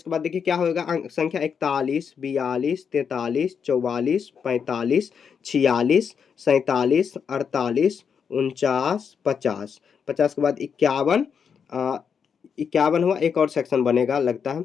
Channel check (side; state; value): right; quieter; 6.8 dB